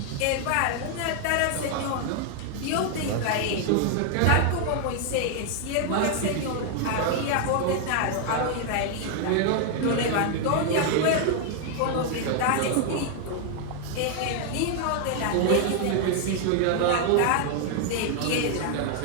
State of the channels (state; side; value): different; both; correlation 0.00